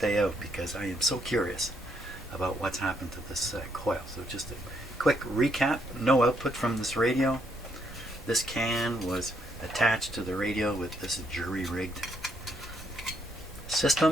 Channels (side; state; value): both; normal; correlation 0.74